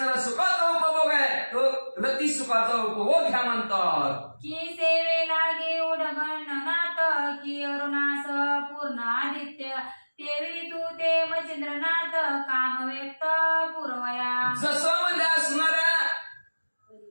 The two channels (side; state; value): both; inverted; correlation -1.00